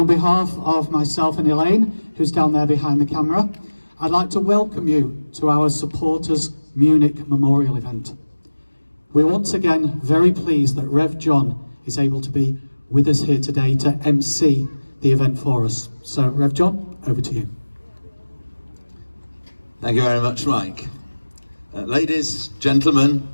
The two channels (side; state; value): both; inverted; correlation -1.00